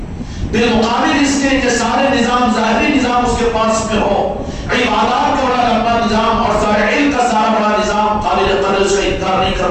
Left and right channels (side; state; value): both; identical; correlation 1.00